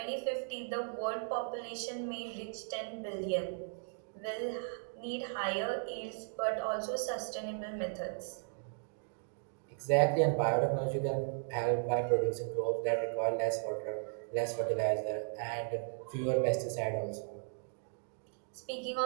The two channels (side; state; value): left; silent; digital silence